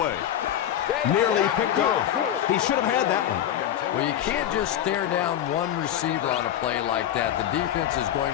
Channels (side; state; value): right; quieter; 10.9 dB